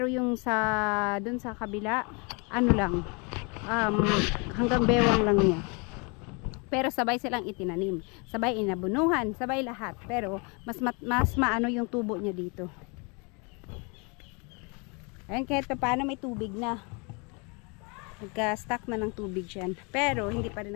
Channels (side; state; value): right; quieter; 32.0 dB